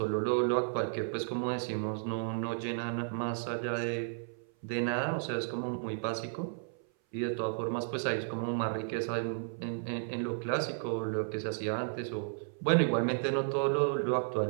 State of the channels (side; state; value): left; silent; 55 dB below the other